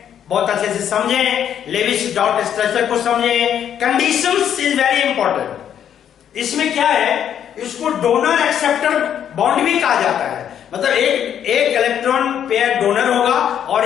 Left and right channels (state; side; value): quieter; right; 9.4 dB